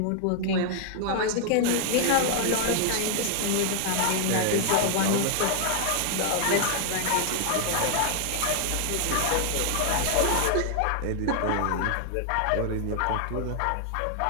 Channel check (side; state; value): both; different; correlation 0.00